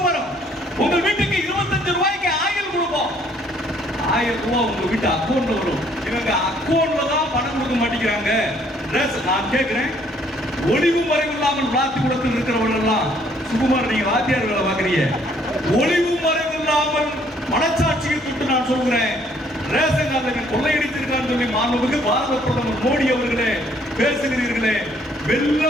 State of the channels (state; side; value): normal; both; correlation 0.64